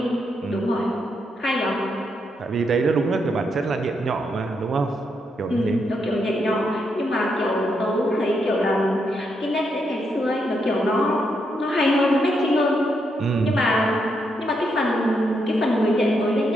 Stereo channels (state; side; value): normal; both; correlation 0.80